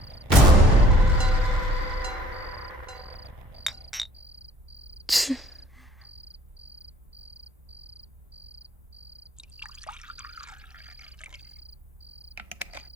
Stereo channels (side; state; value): both; normal; correlation 0.56